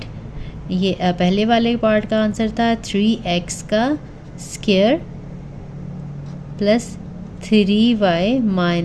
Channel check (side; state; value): both; identical; correlation 1.00